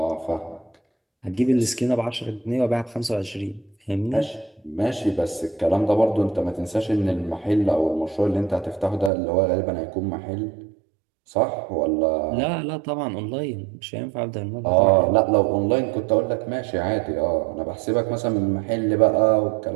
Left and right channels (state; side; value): drops out; left; at 9.1 s